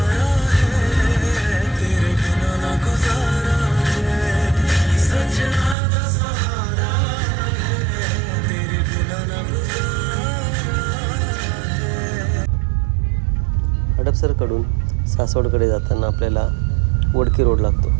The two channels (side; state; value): left; drops out; at 5.8 s